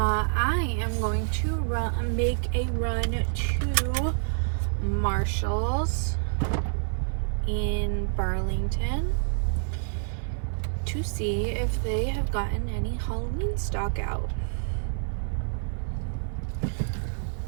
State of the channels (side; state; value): left; silent; digital silence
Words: am going to make a run to Marshall's in Burlington to see if they have gotten any Halloween stock out.